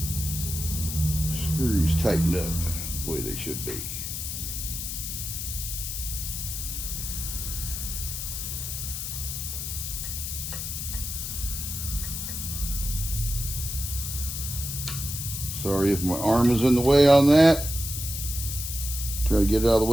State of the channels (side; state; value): left; noise; hiss, 5 dB below the sound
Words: screws tightened up the way they should be. Sorry if my arm is in the way on that. Trying to get it out of the